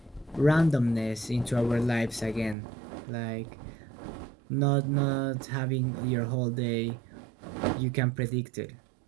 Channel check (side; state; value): left; drops out; at 2.6 s